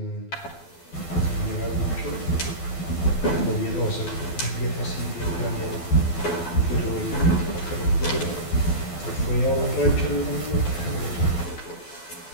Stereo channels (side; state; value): right; late; 12 ms